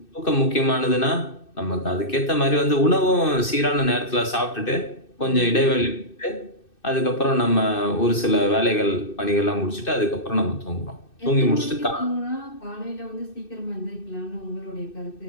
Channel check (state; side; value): late; right; 2.6 ms